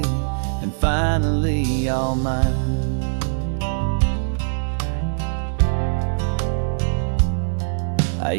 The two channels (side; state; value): left; silent; 64 dB below the other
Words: and finally all mine. I